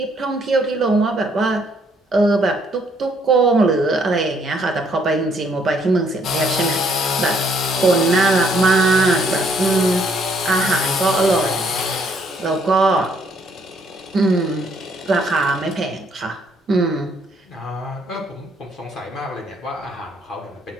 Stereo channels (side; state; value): both; normal; correlation 0.67